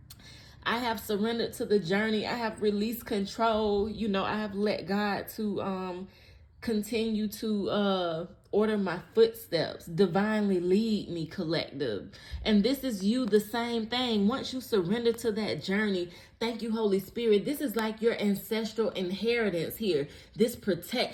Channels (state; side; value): identical; both; correlation 1.00